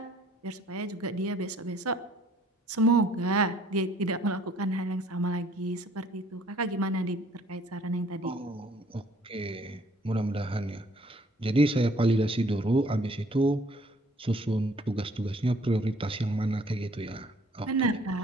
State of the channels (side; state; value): both; normal; correlation 0.58